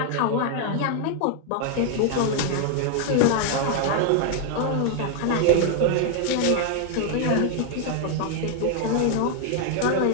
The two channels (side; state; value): both; different; correlation 0.00